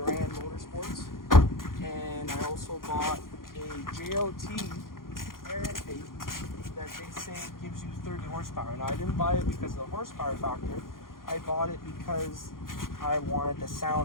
Motorsports, and I also bought a JLT air intake that they say gives you 30 horsepower. Now, I didn't buy it because of the horsepower factor. I bought it because I wanted the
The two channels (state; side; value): late; right; 0.91 ms